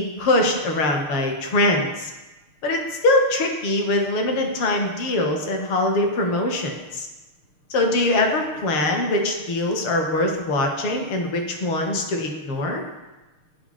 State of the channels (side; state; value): right; late; 6.6 ms